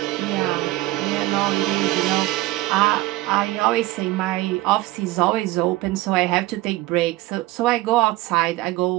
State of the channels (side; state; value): left; quieter; 17.8 dB